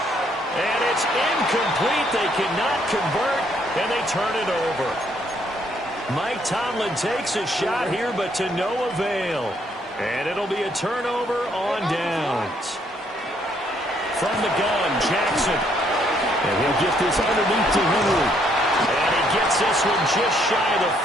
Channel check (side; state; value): both; normal; correlation 0.69